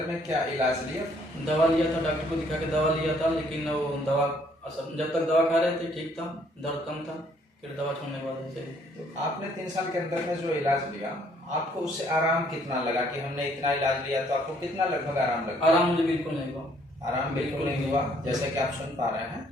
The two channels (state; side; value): normal; both; correlation 0.64